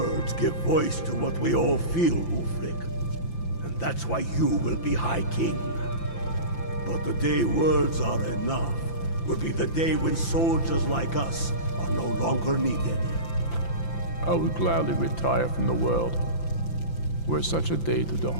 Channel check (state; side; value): late; right; 5.9 ms